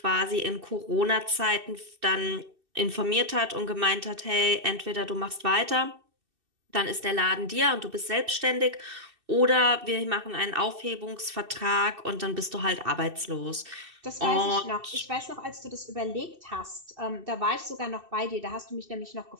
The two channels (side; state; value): left; late; 2.6 ms